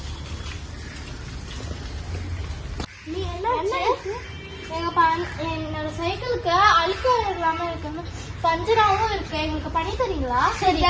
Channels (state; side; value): identical; both; correlation 1.00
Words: நீ என்ன என்னோட சைக்கிளுக்கு அழுக்க இல்லாம இருக்கு, பஞ்சராவும் இருக்கு. எங்களுக்கு பண்ணி தரீங்களா? சரி